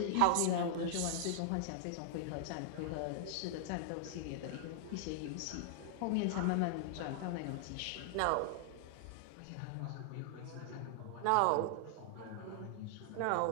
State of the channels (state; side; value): different; both; correlation 0.00